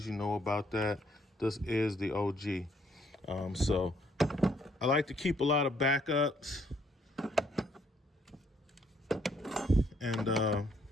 you know about that. This is the OG. So I like to keep a lot of backups, and I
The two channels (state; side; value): normal; both; correlation 0.68